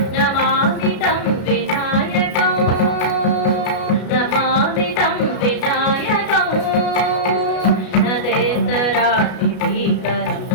नमामि तं विनायकं नमामि तं विनायकं नदेतरातिभीकरं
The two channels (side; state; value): right; late; 33 ms